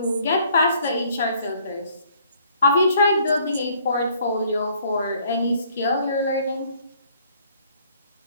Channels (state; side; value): inverted; both; correlation -0.61